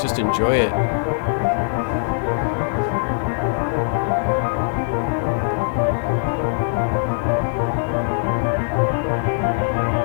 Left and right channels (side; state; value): right; silent; digital silence